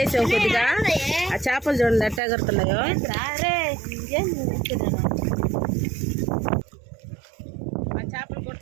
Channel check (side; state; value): left; drops out; at 2.2 s